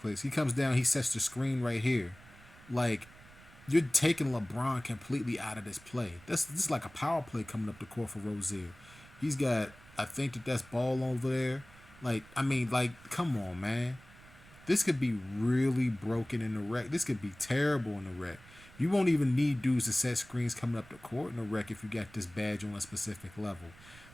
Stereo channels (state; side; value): noise; right; rumble, 22 dB below the sound